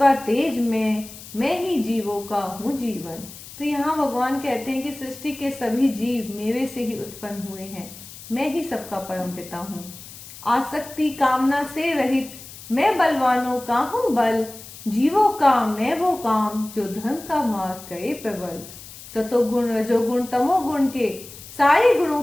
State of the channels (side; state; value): left; noise; hiss, 16 dB below the sound